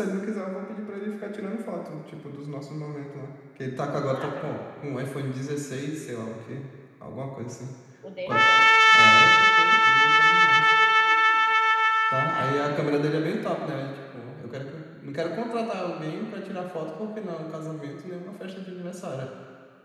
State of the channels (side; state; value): both; identical; correlation 1.00